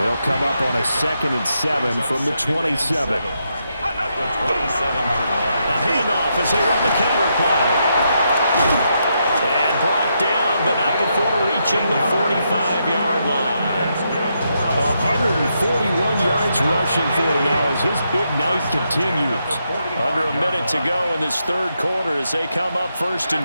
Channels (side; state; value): both; inverted; correlation -0.81